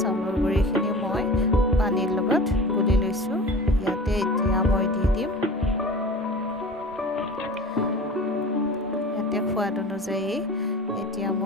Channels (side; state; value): both; normal; correlation 0.38